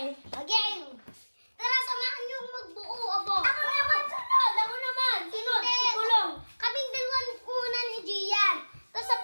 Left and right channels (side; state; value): both; inverted; correlation -1.00